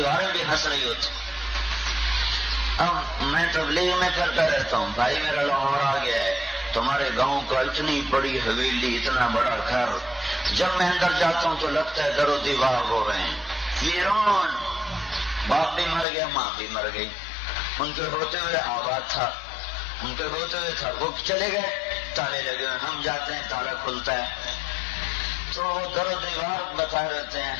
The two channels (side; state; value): right; drops out; at 16.1 s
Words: بھی ہنس رہی ہوتی. اب میں تبلیغ میں پھرتا رہتا ہوں، بھائی میرا لاہور آ گیا ہے، تمہارے گاؤں کا اتنی بڑی حویلی، اتنا بڑا گھر، جب میں اندر جاتا ہوں تو لگتا ہے در و دیوار ہو رہے ہیں، ویران. باپ بھی مر گیا، ماں بھی مر گئی، ان کے ہوتے ہوئے آباد تھا، ان کے ہوتے ہوئے تھا، وہ چلے گئے، تالے لگے ہوئے، ہم جاتے ہیں تالا کھلتا ہے تو در و دیوار بتا رہتے ہیں